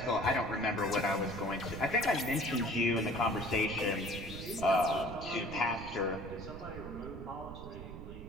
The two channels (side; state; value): right; noise; rumble, 11 dB below the sound